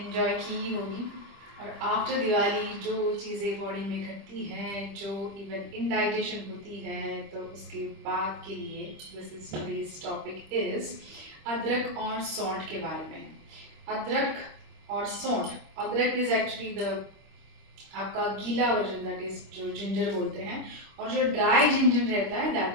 की ही होगी। और आफ्टर दिवाली जो चीज़ें बॉडी में घटती हैं, जो इवन इनडाइजेशन होती है, तो उसके बाद के लिए this is today's topic is अदरक और सौंठ के बारे में। अदरक और सौंठ, अदरक इज एक्चुअली द आपका गीला वर्जन, दैट इज जो जिंजर बोलते हैं, और जो ड्राई जिंजर रहता है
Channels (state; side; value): late; left; 25 ms